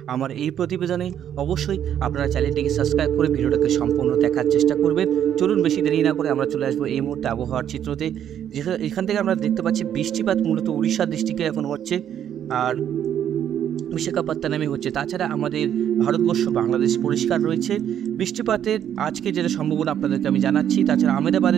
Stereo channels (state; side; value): quieter; left; 9.9 dB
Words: আমার এই প্রতিবেদনে। অবশ্যই আপনারা চ্যানেলটিকে সাবস্ক্রাইব করে ভিডিওটাকে সম্পূর্ণ দেখার চেষ্টা করবেন। চলুন বেশি দেরি না করে আমরা চলে আসবো এই মুহূর্তে আবহাওয়ার চিত্রতে। এখান থেকে আমরা দেখতে পাচ্ছি বৃষ্টিপাত মূলত উড়িষ্যার ডিস্ট্রিক্টে এখন হচ্ছে, আর বিশাখাপত্তনমে হচ্ছে। তাছাড়া আমাদের ভারতবর্ষ বাংলাদেশ পরিষ্কার রয়েছে। বৃষ্টিপাতের আজকে যেটা সম্ভাবনা আপনাদেরকে আমি জানাচ্ছি। তাছাড়া